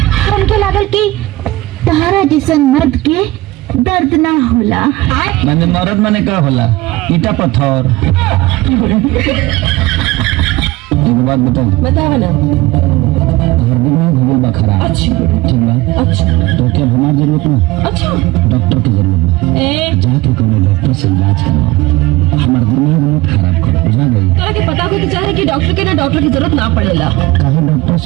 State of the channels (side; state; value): left; quieter; 19.3 dB